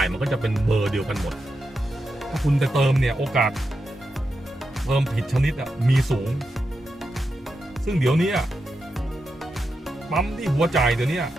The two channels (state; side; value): normal; both; correlation 0.88